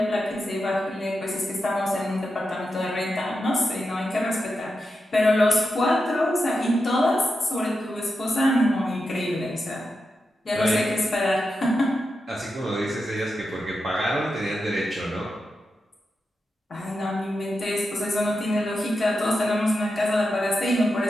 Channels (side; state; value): both; normal; correlation 0.88